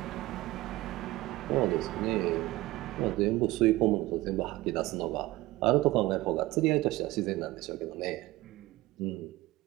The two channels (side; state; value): left; quieter; 18.6 dB